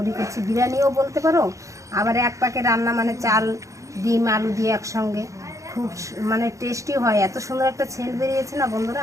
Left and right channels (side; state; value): left; late; 0.15 ms